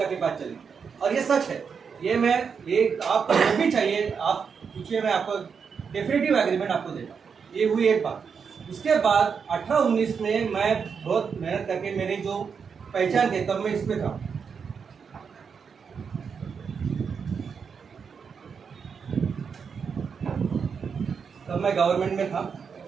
के पास चली। और ये सच है, ये आप जो भी चाहिए आप पूछिए, मैं आपको डेफिनेटिव एग्रीमेंट आपको देगा। ये हुई एक बात। उसके बाद 18-19 में मैं बहुत मेहनत करके मेरी जो पहचान थी तब मैं इसमें था। तब मैं गवर्नमेंट में था,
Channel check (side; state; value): left; quieter; 6.2 dB